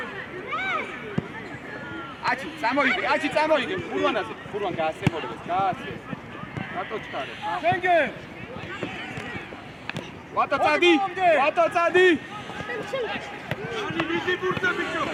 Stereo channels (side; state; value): both; identical; correlation 1.00